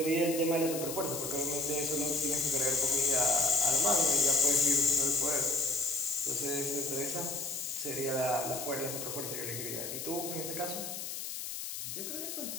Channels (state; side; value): noise; left; hiss, 6 dB below the sound